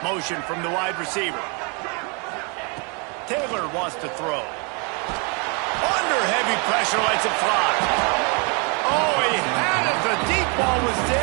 Motion from the wide receiver. Taylor wants to throw. Under heavy pressure, lets it fly. Oh, he had it. The deep ball was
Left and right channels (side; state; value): left; quieter; 33.8 dB